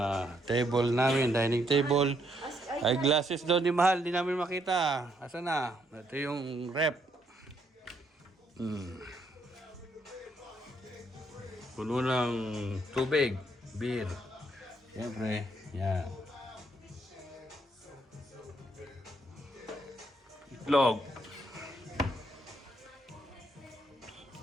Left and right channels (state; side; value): normal; both; correlation 0.73